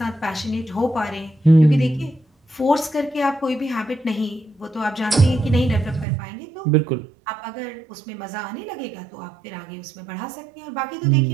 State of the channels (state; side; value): drops out; left; at 6.1 s